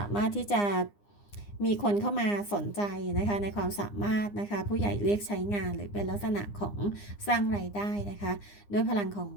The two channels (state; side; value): late; right; 9.8 ms